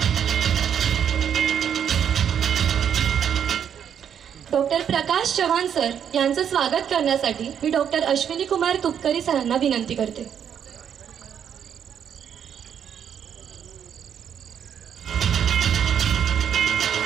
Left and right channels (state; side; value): quieter; left; 8.5 dB